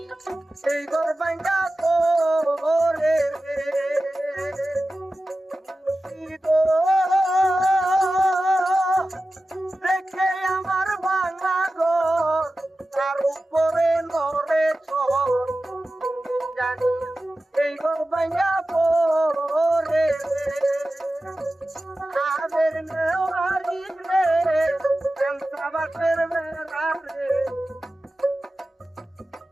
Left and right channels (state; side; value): normal; both; correlation 0.94